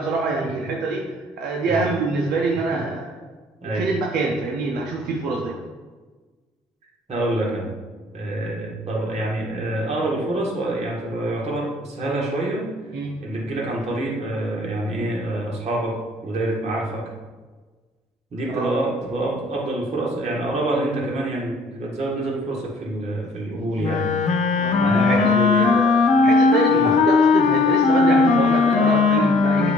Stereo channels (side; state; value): both; normal; correlation 0.57